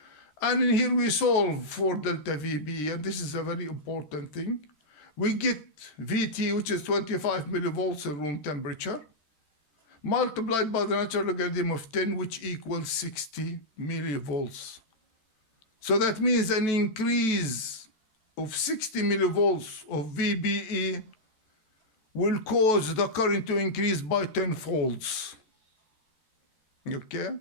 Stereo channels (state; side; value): late; right; 13 ms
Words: And in here we solve for delta VBE, and this is a very important thing. We get VT, which is 25 millivolts in room temperature, multiplied by the natural logarithm of 10, which equals 60 millivolts. So that means an increase of 60 millivolts of VBE will cause the current to increase by 10 folds. Okay?